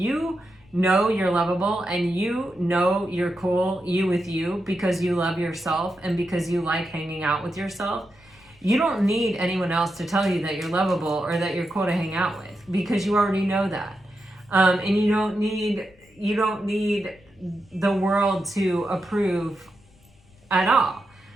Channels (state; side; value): noise; left; rumble, 29 dB below the sound